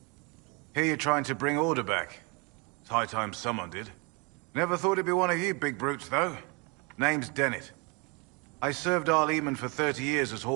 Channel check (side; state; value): left; quieter; 30.5 dB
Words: Here you're trying to bring order back. It's high time someone did. Never thought it'd be one of you big brutes, though. Name's Dennett. I served Arleman for 30 years as